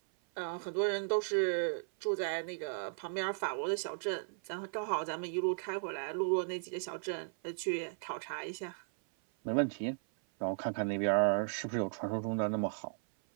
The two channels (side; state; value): left; silent; 54 dB below the other